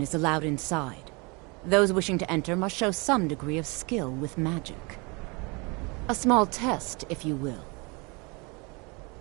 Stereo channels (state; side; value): quieter; left; 29.0 dB